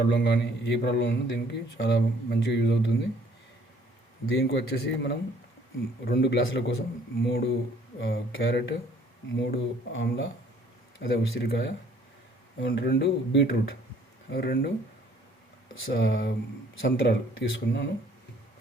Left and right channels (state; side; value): normal; both; correlation 0.60